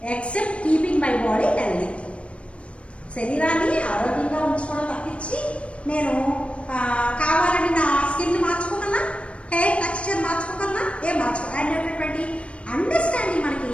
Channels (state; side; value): late; right; 0.061 ms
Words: except keeping my body healthy. శరీరాన్ని ఆరోగ్యంగా ఉంచుకోవడం తప్పించి నేను కావాలని నా skin మార్చుకోగలనా, hair texture మార్చుకోగలనా? ఏం మార్చుకోవాలనేటటువంటి understanding మనకి